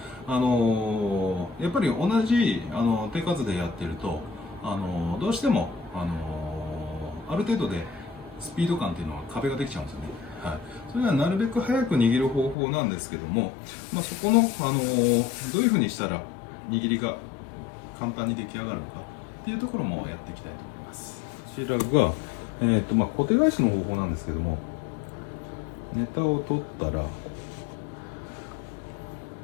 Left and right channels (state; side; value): drops out; right; at 12.6 s